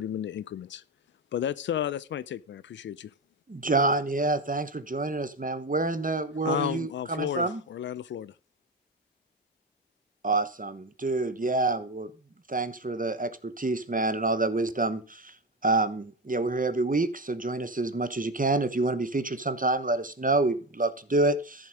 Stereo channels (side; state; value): both; normal; correlation 0.18